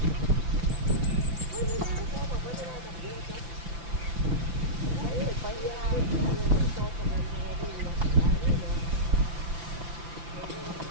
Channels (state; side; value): late; left; 5.9 ms